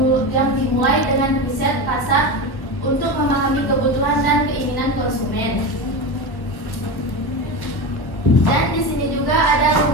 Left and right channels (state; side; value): late; right; 1.4 ms